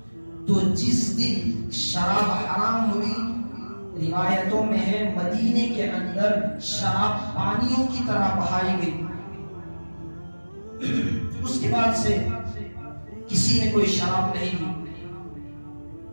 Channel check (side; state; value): both; inverted; correlation -1.00